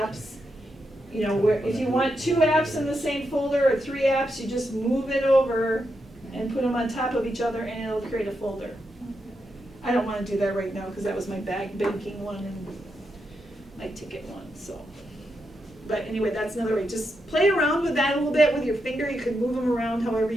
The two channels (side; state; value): both; normal; correlation 0.84